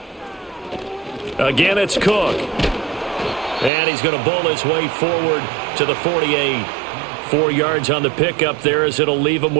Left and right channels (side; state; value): left; drops out; at 3.7 s